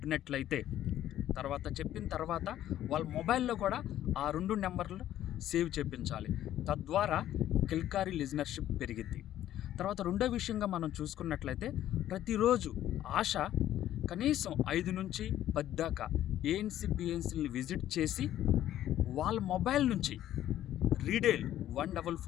చెప్పిన తర్వాత వాళ్ళ మొబైల్లో కూడా ఆ 2 నెంబర్లు సేవ్ చేయించాలి. తద్వారా కిల్కారీ లిజనర్షిప్ పెరిగిద్ది. తర్వాత రెండో విషయంగా మనం చూసుకున్నట్లయితే ప్రతిరోజు ఆశ కనీసం 5 నుంచి 10 దాకా ఏఎన్సీ పిఎన్సీని విజిట్ చేసి వాళ్ళ మొబైల్ నుంచి రీడేల్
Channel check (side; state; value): right; quieter; 12.4 dB